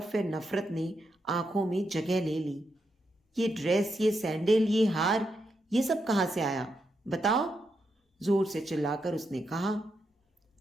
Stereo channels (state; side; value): normal; both; correlation 0.83